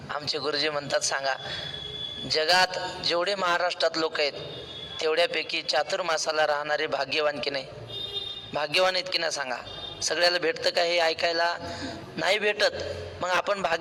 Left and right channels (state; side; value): identical; both; correlation 1.00